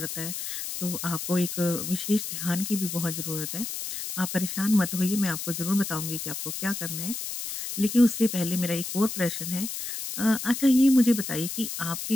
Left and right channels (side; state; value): left; noise; hiss, 6 dB below the sound